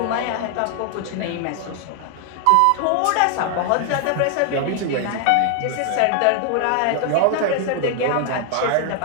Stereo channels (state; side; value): different; both; correlation 0.00